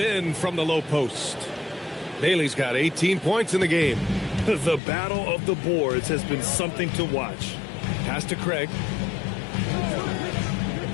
from the low post. Bailey's got 18 points in the game. The battle of the boards has been something to watch. Pass to Craig.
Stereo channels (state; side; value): drops out; right; at 4.8 s